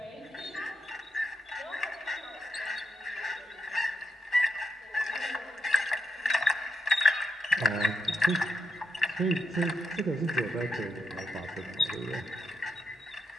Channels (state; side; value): normal; both; correlation 0.82